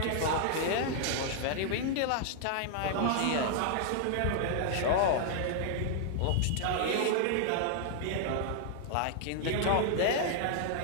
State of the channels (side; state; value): both; different; correlation -0.01